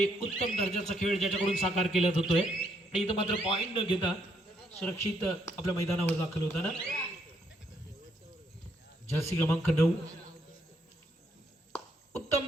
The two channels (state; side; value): normal; both; correlation 0.73